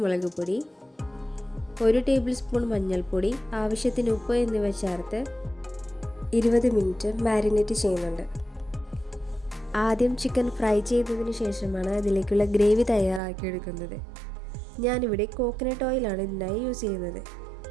മുളക് പൊടി, 1 ടേബിൾ സ്പൂൺ മഞ്ഞൾപ്പൊടി, ആവശ്യത്തിന് ഉപ്പ് എന്നിവ ചേർത്ത് 20 മിനിറ്റ് മാരിനേറ്റ് ചെയ്യുന്നുണ്ട്. ആദ്യം ചിക്കൻ ഫ്രൈ ചെയ്തതിന് ശേഷമാണ് അതിലേക്കുള്ള ഗ്രേവി തയ്യാറാക്കിയെടുക്കുന്നത്. ഞാനിവിടെ കോക്കനട്ട് ഓയിലാണ് ഇതിനായി യൂസ് ചെയ്യുന്നത്.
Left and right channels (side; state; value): left; drops out; at 13.2 s